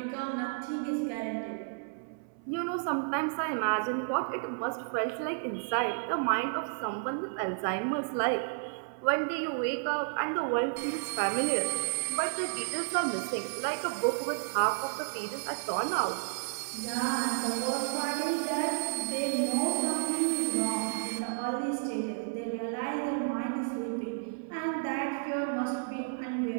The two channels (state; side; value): silent; left; 57 dB below the other